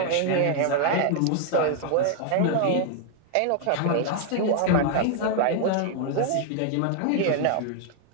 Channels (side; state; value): both; different; correlation 0.00